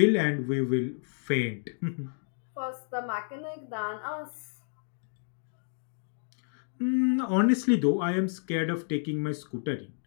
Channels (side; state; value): right; silent; digital silence